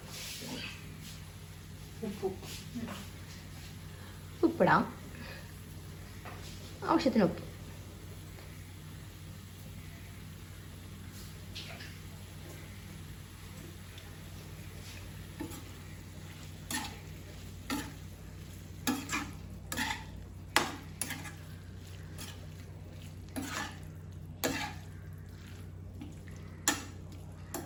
ഉപ്പിടാം, ആവശ്യത്തിന് ഉപ്പ്.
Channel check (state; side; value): identical; both; correlation 1.00